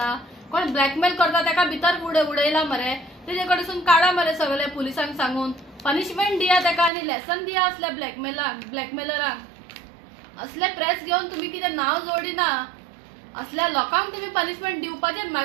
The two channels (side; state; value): left; drops out; at 6.9 s